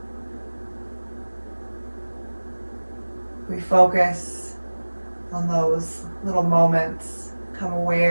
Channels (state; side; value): inverted; both; correlation -1.00